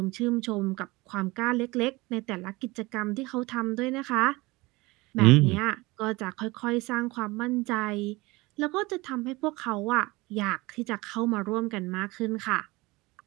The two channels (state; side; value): quieter; left; 22.3 dB